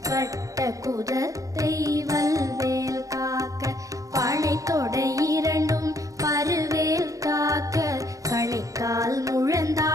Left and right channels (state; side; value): late; left; 0.16 ms